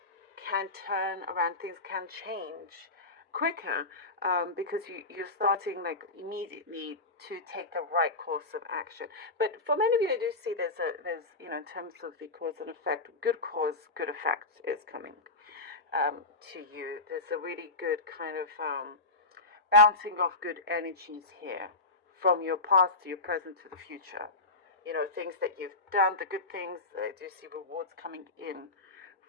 can turn around, things can change quicker, because you're starting like immediately to take the right course of action. But for many of you, I do see there's in terms of the cause and effect, good cause, good effect is coming to you. There's a really good kind of bouncing off good energies here, from your past to your present to the future. Things that you've done, the good things. I do see rewards coming in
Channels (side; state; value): right; quieter; 3.2 dB